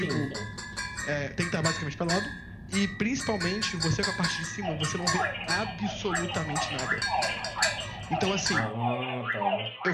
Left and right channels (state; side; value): identical; both; correlation 1.00